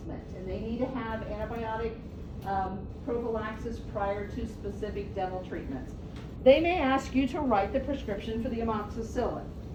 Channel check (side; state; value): both; identical; correlation 1.00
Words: and they need to have antibiotic prophylaxis prior to specific dental treatments, they may ask you to write the prescription for the amoxicillin.